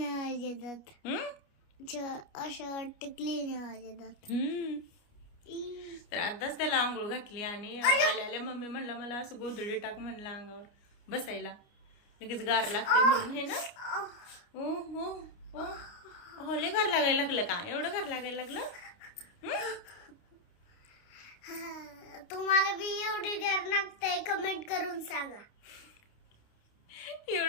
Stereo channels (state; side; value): late; right; 29 ms